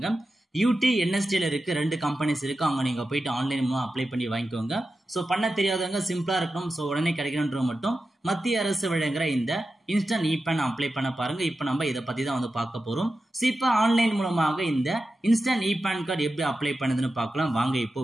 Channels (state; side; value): normal; both; correlation 0.92